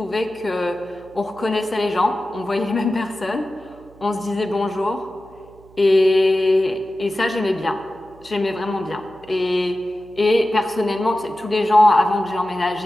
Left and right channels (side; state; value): right; noise; hum, 25 dB below the sound